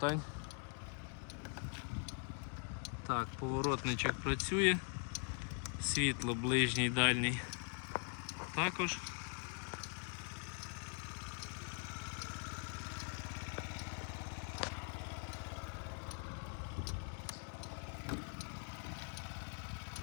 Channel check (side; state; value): right; quieter; 38.4 dB